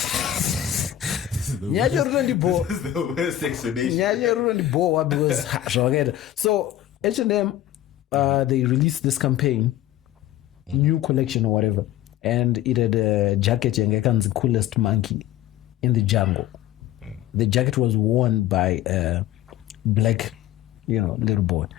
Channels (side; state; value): right; quieter; 12.5 dB